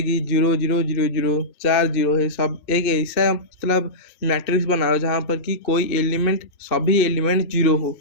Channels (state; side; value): late; right; 2.6 ms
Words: कि 0 0 0 0, 4 जीरो है सब। एक ऐसा मतलब मैट्रिक्स बनाओ जहाँ पर कि कोई एलिमेंट सभी एलिमेंट जीरो हो,